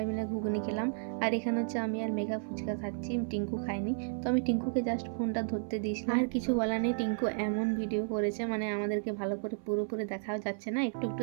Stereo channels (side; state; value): left; silent; 56 dB below the other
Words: মিলে ঘুগনি খেলাম। আর এখানে হচ্ছে আমি আর মেঘা ফুচকা খাচ্ছি, টিঙ্কু খায়নি। তো আমি টিঙ্কুকে জাস্ট ফোনটা ধরতে দিয়েছিলাম। আর কিছু বলার নেই, টিঙ্কু এমন ভিডিও করেছে, মানে আমাদেরকে ভালো করে পুরোপুরি দেখাও যাচ্ছে না, একটু একটু